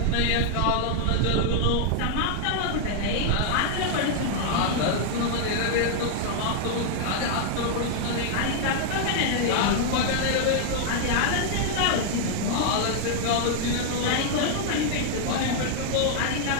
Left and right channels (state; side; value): different; both; correlation 0.00